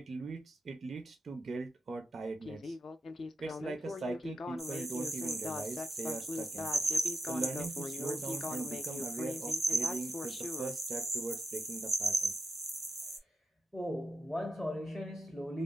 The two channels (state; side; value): normal; both; correlation 0.84